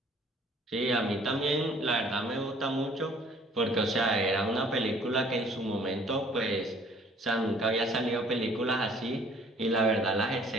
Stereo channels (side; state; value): both; normal; correlation 0.56